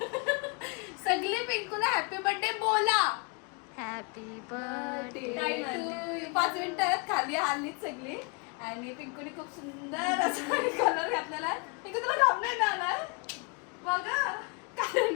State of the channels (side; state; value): right; quieter; 32.0 dB